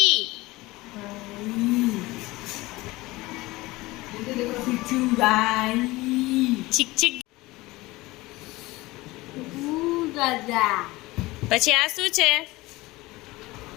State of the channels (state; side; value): quieter; right; 20.3 dB